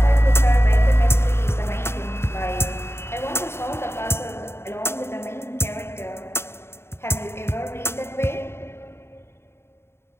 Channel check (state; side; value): late; right; 0.12 ms